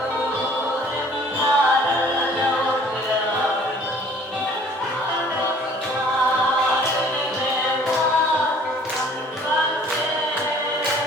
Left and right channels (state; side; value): normal; both; correlation 0.53